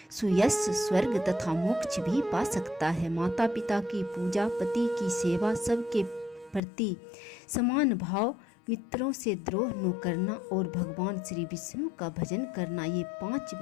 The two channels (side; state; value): right; drops out; at 6.6 s